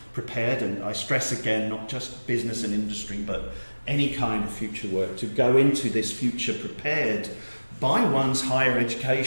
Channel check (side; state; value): both; inverted; correlation -1.00